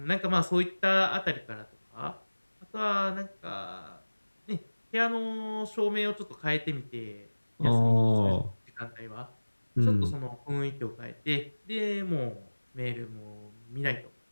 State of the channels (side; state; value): both; inverted; correlation -1.00